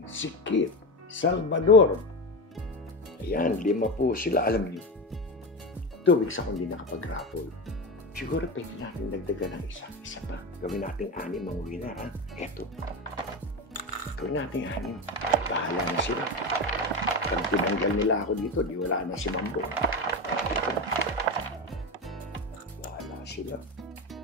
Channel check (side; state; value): both; normal; correlation 0.20